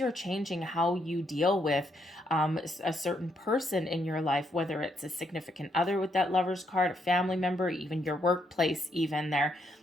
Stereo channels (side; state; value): both; normal; correlation 0.76